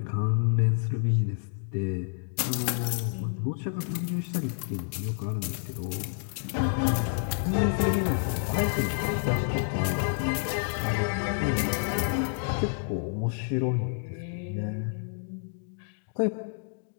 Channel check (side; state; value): right; silent; 59 dB below the other